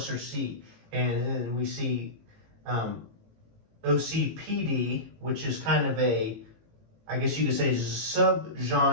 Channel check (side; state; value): left; late; 18 ms